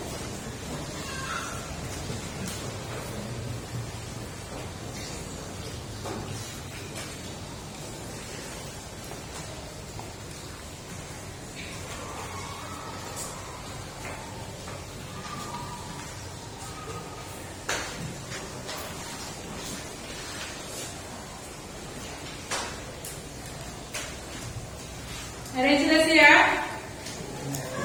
Ada yang sudah siap?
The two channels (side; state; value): both; identical; correlation 1.00